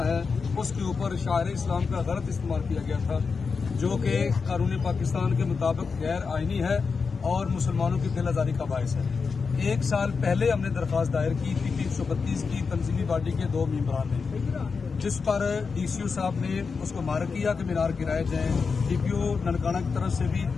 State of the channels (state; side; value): quieter; right; 5.1 dB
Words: ہے اس کے اوپر شاعر اسلام کا غلط استعمال کیا گیا تھا، جو کہ قانون پاکستان کے مطابق غیر آئینی ہے اور مسلمانوں کی دل آزاری کا باعث ہے۔ ایک سال پہلے ہم نے درخواست دائر کی تھی 332 کی تنظیمی باڈی کے 2 ممبران نے، جس پر ڈی سی او صاحب نے اس کو مارک کیا کہ مینار گرائے جائیں۔ ڈی پی او ننکانہ کی طرف سے بھی